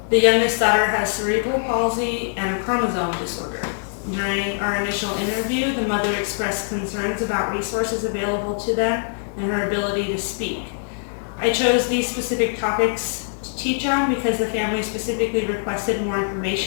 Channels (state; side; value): silent; right; digital silence